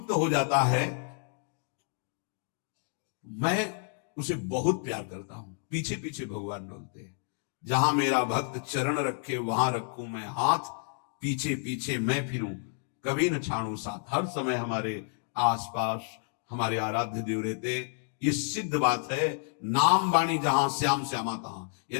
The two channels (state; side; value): silent; right; 58 dB below the other